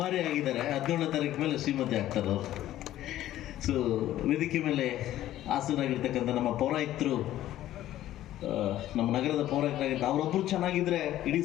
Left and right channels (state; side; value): quieter; right; 13.5 dB